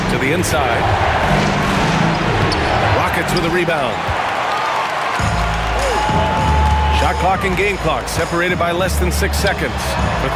To the inside. Rockets with a rebound. Shot clock and game clock separated by less than 6 seconds. For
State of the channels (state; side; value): identical; both; correlation 1.00